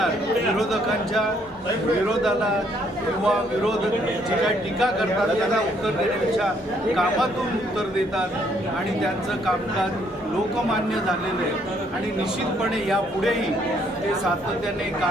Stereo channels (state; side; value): normal; both; correlation 0.68